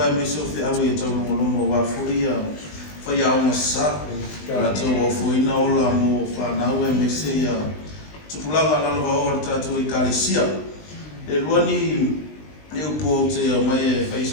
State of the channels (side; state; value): right; late; 20 ms